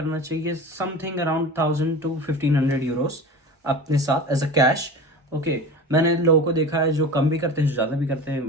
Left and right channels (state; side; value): normal; both; correlation 0.33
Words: चाहिए समथिंग अराउंड 1000 to 1500 euros अपने साथ एज अ कैश. ओके, मैंने लोगों को देखा है जो कम भी करते हैं, जो ज़्यादा भी करते हैं.